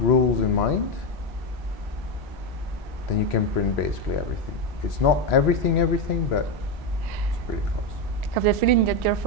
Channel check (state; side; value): normal; both; correlation 0.10